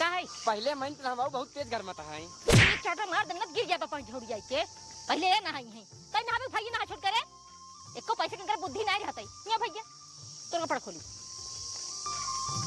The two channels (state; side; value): identical; both; correlation 1.00